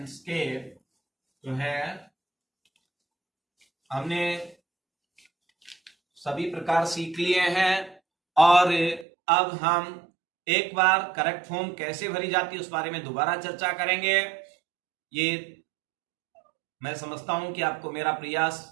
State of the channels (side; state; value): left; drops out; at 9.1 s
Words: के जो है हमने सभी प्रकार सीख लिए हैं, और अब हम एक बार करेक्ट फॉर्म कैसे भरी जाती है उस बारे में दोबारा चर्चा करेंगे। ये मैं समझता हूं कि आपको मेरा प्रयास